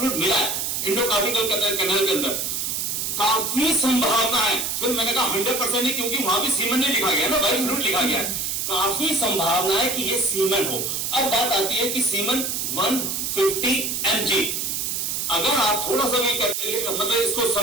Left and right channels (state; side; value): noise; right; hiss, 1 dB below the sound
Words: मिला है एंडोकार्निकल कैनाल के अंदर, काफी संभावना है, फिर मैंने कहा 100% नहीं, क्योंकि वहां भी सीमेन नहीं लिखा गया ना, व्हाइट फ्लूइड लिखा गया है। काफी संभावना है कि ये सीमेन हो। अब बात आती है कि सीमेन 150 mg, अगर आप थोड़ा सा भी मतलब इसको